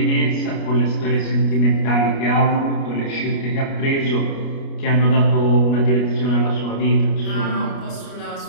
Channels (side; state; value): right; late; 29 ms